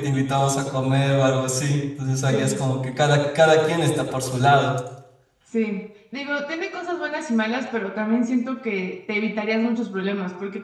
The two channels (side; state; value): both; identical; correlation 1.00